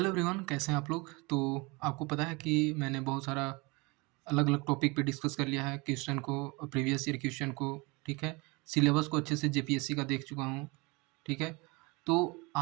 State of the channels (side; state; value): left; quieter; 26.6 dB